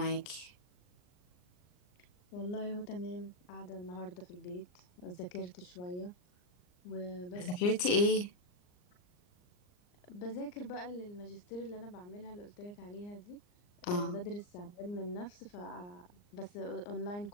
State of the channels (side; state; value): right; late; 39 ms